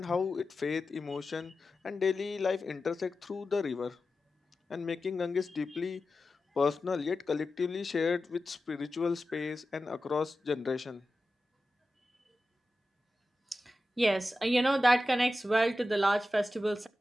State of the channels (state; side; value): normal; both; correlation 0.92